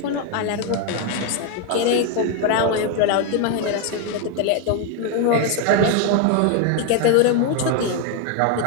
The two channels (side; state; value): both; different; correlation 0.01